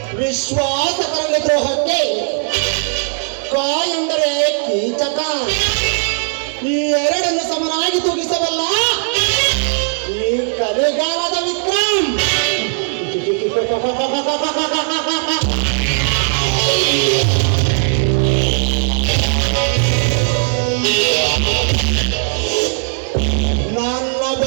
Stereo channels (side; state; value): left; silent; 59 dB below the other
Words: ವಿಶ್ವಾಸಕರಲ್ಲಿ ದ್ರೋಹಕ್ಕೆ ಕ ಎಂದರೆ ಕೀಚಕ. ಈ ಎರಡನ್ನು ಸಮನಾಗಿ ತೂಗಿಸಬಲ್ಲ ಈ ಕಲಿಗಾಲದ ವಿಕ್ರಮ್. ನನ್ನ